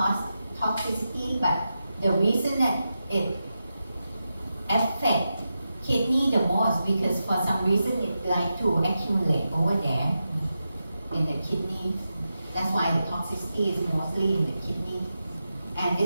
toxicity. But the reason that it affects kidney the most, because for some reason it like to accumulate over there in the kidney. That's why the toxicity is mostly in the kidney. And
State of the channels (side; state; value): both; inverted; correlation -0.90